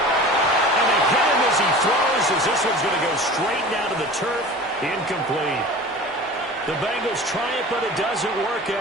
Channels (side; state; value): both; normal; correlation 0.38